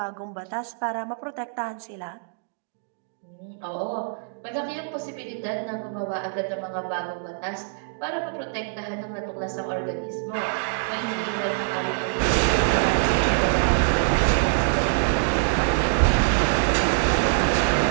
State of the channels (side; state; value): left; silent; digital silence